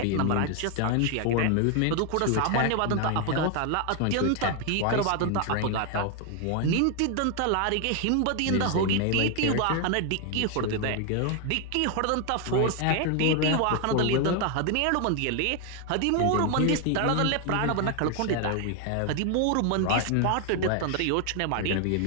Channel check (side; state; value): both; different; correlation 0.01